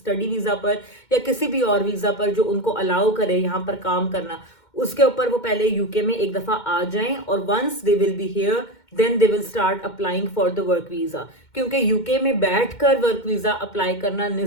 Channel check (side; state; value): right; late; 2.1 ms